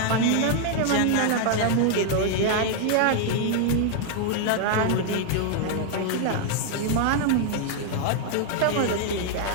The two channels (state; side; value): different; both; correlation 0.00